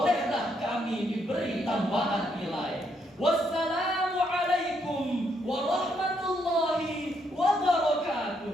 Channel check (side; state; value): both; normal; correlation 0.75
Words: kami diberi tambahan nilai. Wassalam.